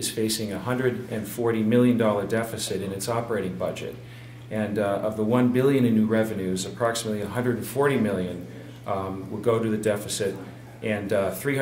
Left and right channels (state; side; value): identical; both; correlation 1.00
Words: facing a $140 million deficit in its operating budget. And of the $1 billion in new revenues, approximately $140 million will go to the deficit, and